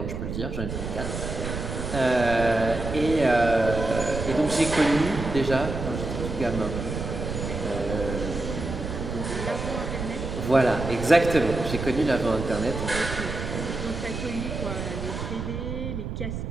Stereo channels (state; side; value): noise; right; rumble, 5 dB below the sound